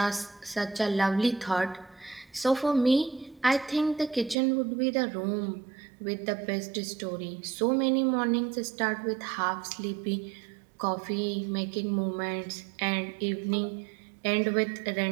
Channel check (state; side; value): drops out; left; at 4.4 s